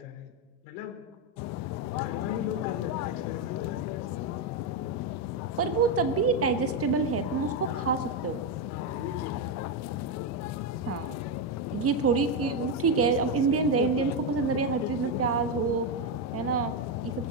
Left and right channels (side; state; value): both; normal; correlation 0.07